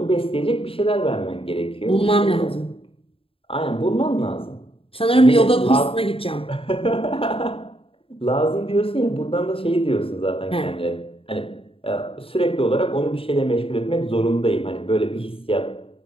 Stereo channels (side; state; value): right; late; 0.27 ms